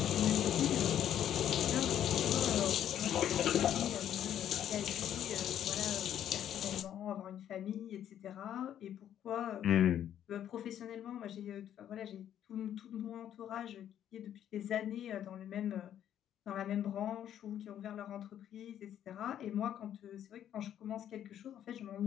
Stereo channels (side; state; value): right; quieter; 10.5 dB